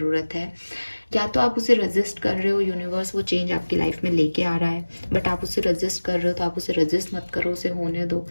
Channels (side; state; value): both; inverted; correlation -1.00